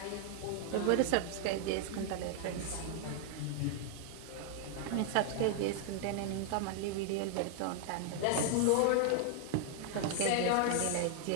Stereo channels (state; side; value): different; both; correlation 0.00